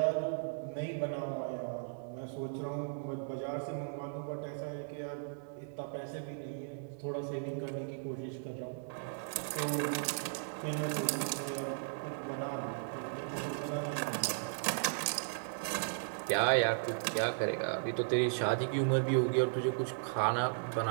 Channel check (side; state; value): left; silent; 54 dB below the other